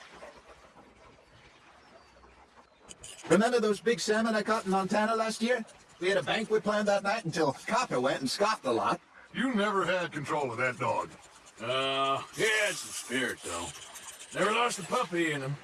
Remember those big salmon I caught in Montana last year? We had a banquet planned that night until Copper went and scoffed a lot. You never had control of that dog. Yeah, it's the spirit, though. Never lost a puppy in him,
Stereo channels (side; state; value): both; identical; correlation 1.00